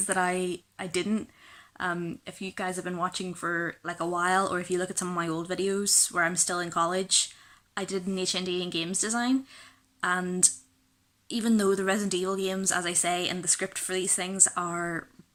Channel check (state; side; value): identical; both; correlation 1.00